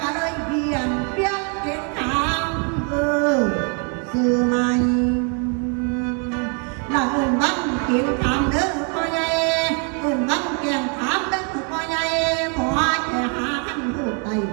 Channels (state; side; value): quieter; left; 37.7 dB